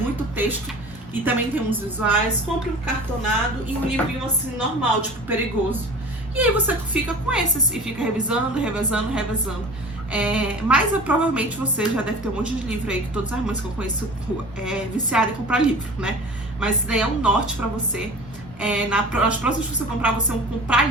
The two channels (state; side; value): normal; both; correlation 0.40